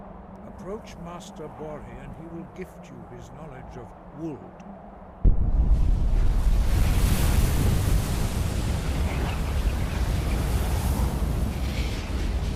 Approach Master Bori and he will gift you his knowledge of Wuld.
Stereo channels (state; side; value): identical; both; correlation 1.00